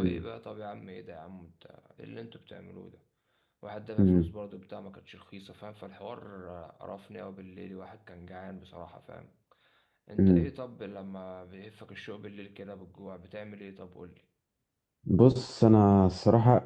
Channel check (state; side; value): identical; both; correlation 1.00